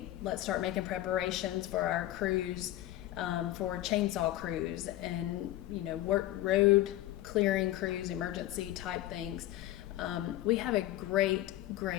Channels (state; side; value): quieter; right; 15.1 dB